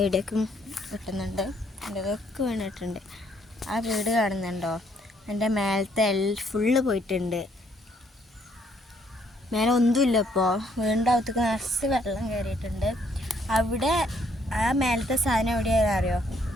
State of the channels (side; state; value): both; normal; correlation 0.68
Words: ഇടിയൊക്കെ കിട്ടുന്നുണ്ട്, ഇതൊക്കെ വീണിട്ടുണ്ട്. ആ വീട് കാണുന്നുണ്ടോ? എൻ്റെ മേലത്തെ ഫുള്ള് പോയിട്ടുണ്ട്. മേലെ ഒന്നുമില്ല. ഇപ്പോൾ വീടിൻ്റെ അകത്തേക്ക് നിറച്ച് വെള്ളം കയറിയിട്ടുണ്ട്. അവിടെ ആ മേലത്തെ സാധനം എവിടെയാണെന്ന് അറിയോ?